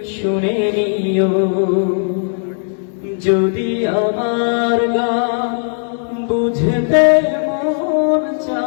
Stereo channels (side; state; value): right; silent; 66 dB below the other